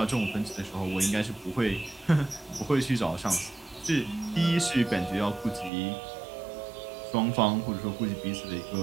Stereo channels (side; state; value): left; drops out; at 5.7 s